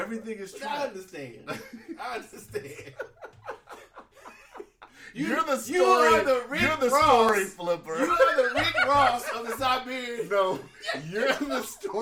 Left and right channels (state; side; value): identical; both; correlation 1.00